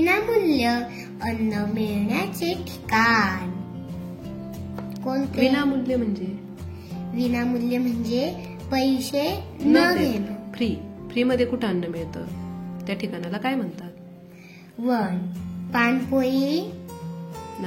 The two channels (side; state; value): both; identical; correlation 1.00